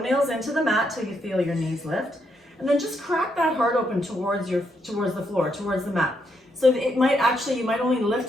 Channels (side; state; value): both; normal; correlation 0.77